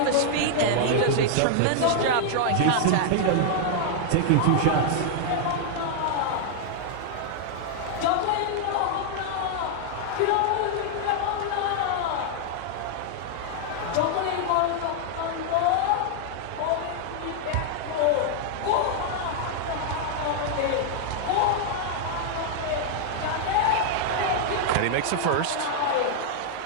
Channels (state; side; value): different; both; correlation -0.01